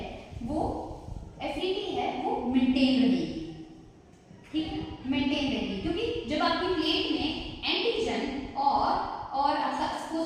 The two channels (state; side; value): identical; both; correlation 1.00